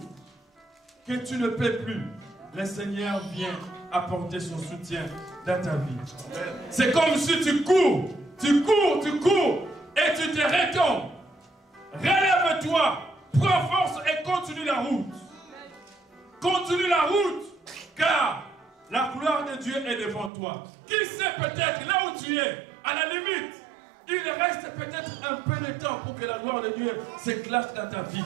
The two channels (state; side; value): drops out; left; at 20.3 s